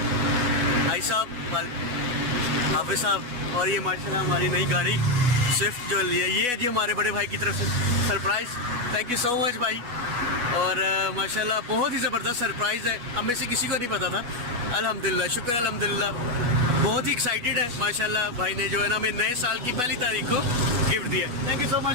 भाई साहब हाफिज़ साहब, और ये माशाल्लाह हमारी नई गाड़ी स्विफ्ट जो ली है, ये है जी हमारे बड़े भाई की तरफ से surprise. Thank you so much भाई, और माशाल्लाह बहुत ही ज़बरदस्त सरप्राइज़ है, हम में से किसी को नहीं पता था। अल्हम्दुलिल्लाह, शुक्र अल्हम्दुलिल्लाह, बहुत ही एक्साइटेड है माशाल्लाह। भाई ने जो है ना हमें नए साल की पहली तारीख को गिफ्ट दिया। Thank you so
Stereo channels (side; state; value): left; late; 8.2 ms